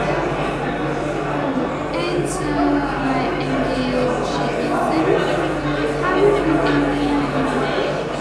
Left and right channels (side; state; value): both; identical; correlation 1.00